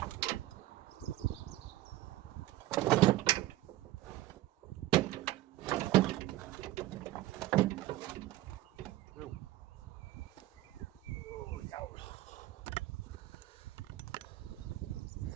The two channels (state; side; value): quieter; left; 15.8 dB